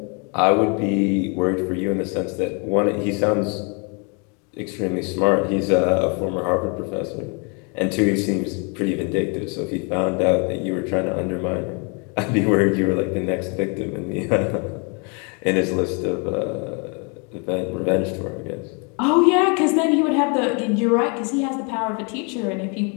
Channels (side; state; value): right; quieter; 35.0 dB